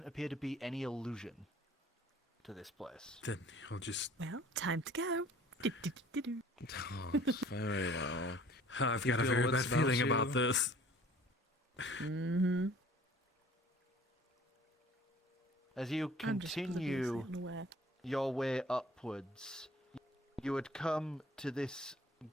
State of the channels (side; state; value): both; normal; correlation 0.51